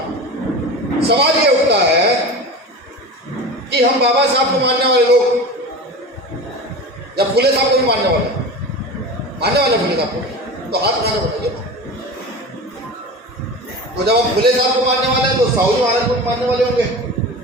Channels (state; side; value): normal; both; correlation 0.31